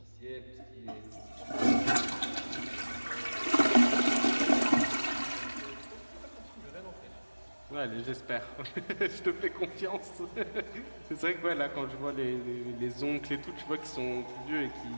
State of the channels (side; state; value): both; inverted; correlation -1.00